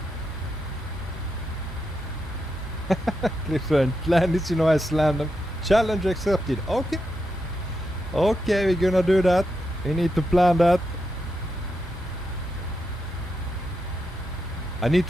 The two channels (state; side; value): normal; both; correlation 0.85